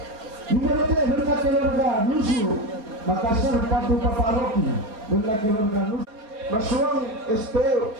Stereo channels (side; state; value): left; late; 4.4 ms